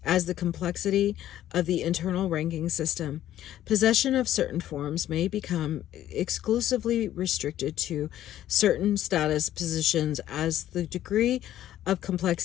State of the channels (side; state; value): right; quieter; 12.5 dB